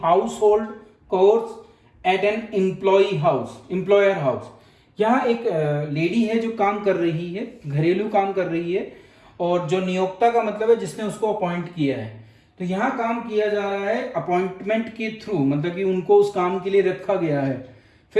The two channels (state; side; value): identical; both; correlation 1.00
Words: house hold course eight an employer house. यहाँ एक लेडी है जो काम कर रही है, घरेलू काम कर रही है, और जो नियोक्ता का मतलब है जिसने उसको अपॉइंट किया है। तो यहाँ काम किया जा रहा है अपॉइंटमेंट के थ्रू, मतलब कि उनको उस काम के लिए रखा गया है।